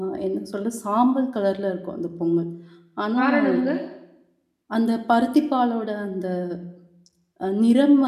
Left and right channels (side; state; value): both; identical; correlation 1.00